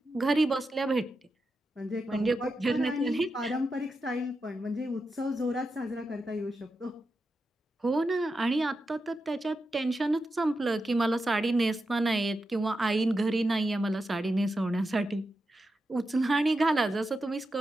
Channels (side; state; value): both; normal; correlation 0.88